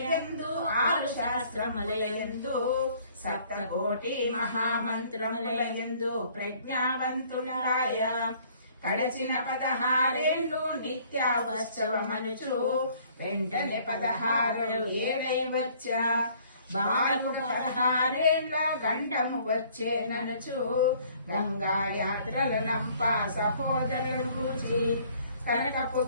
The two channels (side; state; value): both; inverted; correlation -0.58